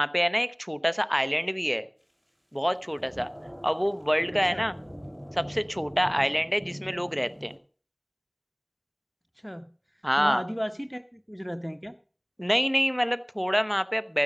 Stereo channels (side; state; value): both; identical; correlation 1.00